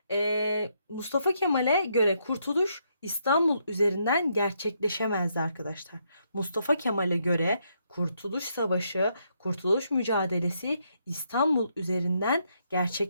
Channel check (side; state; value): both; inverted; correlation -0.76